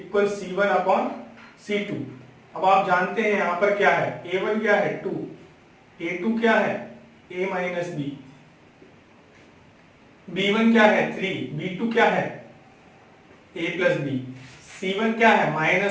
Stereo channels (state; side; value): identical; both; correlation 1.00